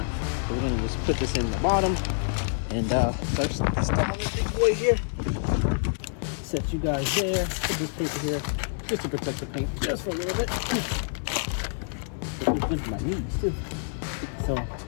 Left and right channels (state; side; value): silent; right; digital silence